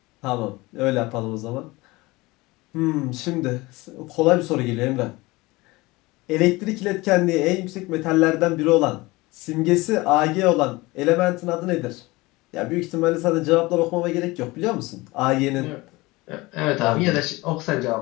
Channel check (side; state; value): right; quieter; 21.8 dB